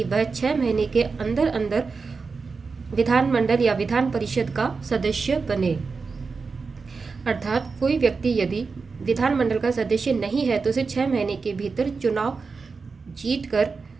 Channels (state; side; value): quieter; left; 4.7 dB